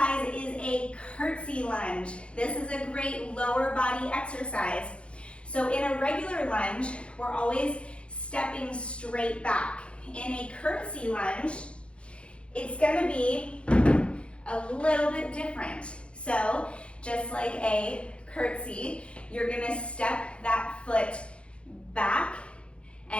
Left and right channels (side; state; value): right; late; 0.059 ms